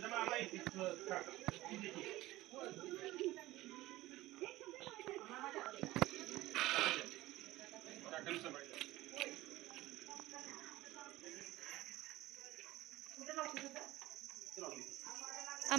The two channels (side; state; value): left; quieter; 17.4 dB